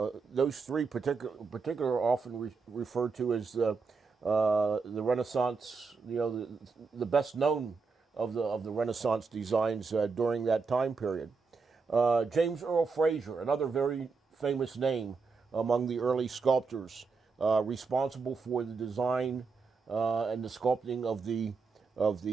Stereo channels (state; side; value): quieter; left; 4.7 dB